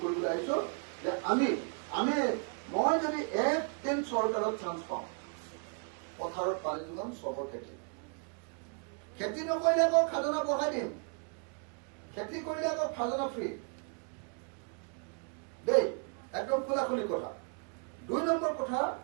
কৰিবলৈ আহিছো যে মই যদি একদিন চৰকাৰত চান্স পাওঁ, পথাৰত পানী যোগান, চবৰ খেতি নকৰিলে আকৌ খাজনা বঢ়াই দিম, খেতি কৰিলে আকৌ খাজনা ফ্ৰী দেই, একদম খোলাখুলি কথা। 2 নম্বৰ কথা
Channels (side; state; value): left; quieter; 38.4 dB